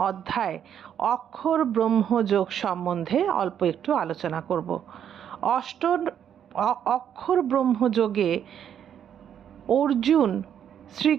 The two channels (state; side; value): quieter; left; 9.1 dB